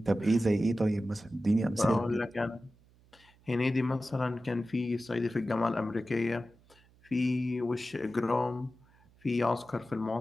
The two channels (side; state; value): right; noise; hum, 30 dB below the sound